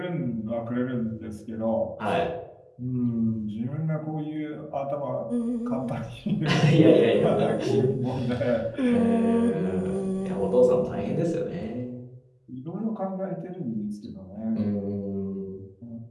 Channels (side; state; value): both; identical; correlation 1.00